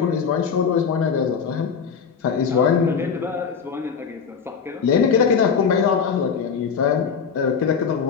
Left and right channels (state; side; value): quieter; right; 6.4 dB